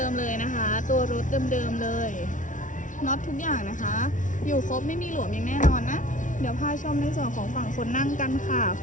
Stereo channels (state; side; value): late; right; 0.37 ms